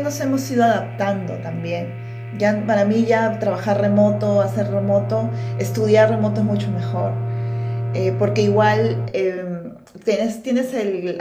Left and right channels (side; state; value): both; identical; correlation 1.00